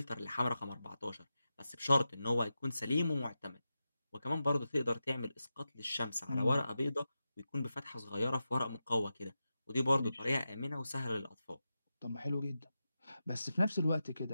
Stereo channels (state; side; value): inverted; both; correlation -0.90